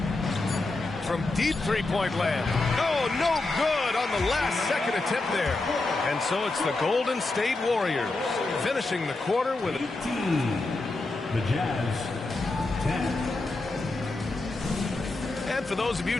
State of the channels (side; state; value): right; quieter; 3.2 dB